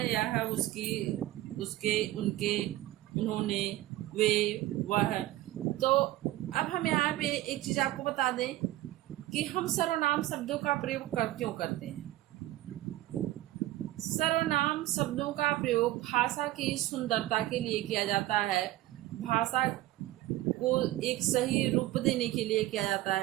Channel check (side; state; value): left; quieter; 16.0 dB